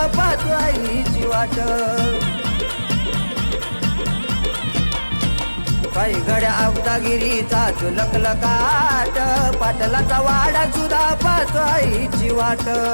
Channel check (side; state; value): both; inverted; correlation -1.00